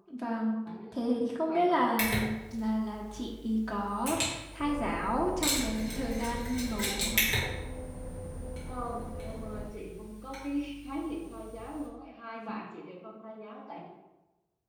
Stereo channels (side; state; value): both; identical; correlation 1.00